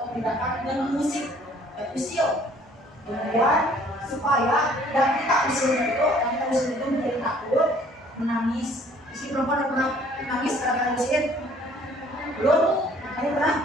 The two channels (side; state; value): both; normal; correlation 0.57